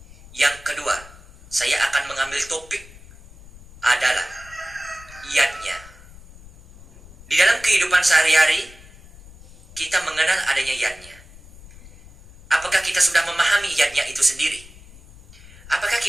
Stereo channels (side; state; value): left; noise; rumble, 21 dB below the sound